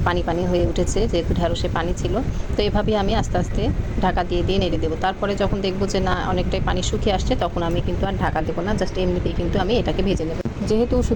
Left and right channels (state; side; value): identical; both; correlation 1.00